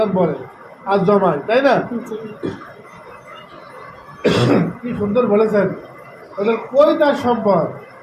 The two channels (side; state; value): both; identical; correlation 1.00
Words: বলে আর জমায়, তাই না? জি কি সুন্দর বলেছেন। ওদের কই তার সম্পদ,